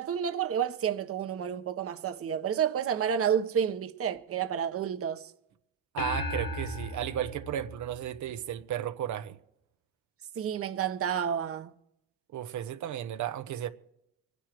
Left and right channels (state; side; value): quieter; left; 7.6 dB